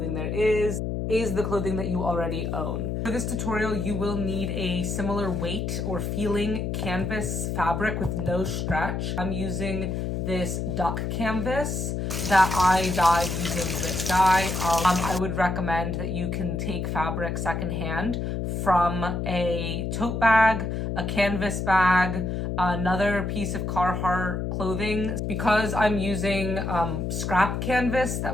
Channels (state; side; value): noise; left; hum, 2 dB below the sound